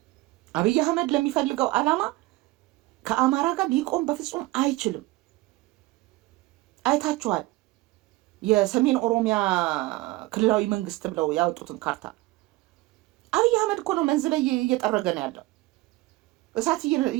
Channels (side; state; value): left; quieter; 19.8 dB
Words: አብይ አህመድ ለሚፈልገው ዓላማ ከአማራ ጋር ሊቆም በፍጹም አይችልም። አይታችኋል። የሰሜን ኦሮሚያ ክልላዊ መንግስት ብለው ያወጡትን ካርታ አብይ አህመድ እኮ ነው መንዝ ላይ እየጠረገ ነው ያለው። እሳት